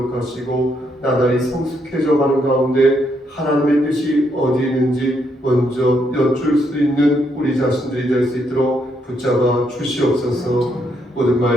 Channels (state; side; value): normal; both; correlation 0.75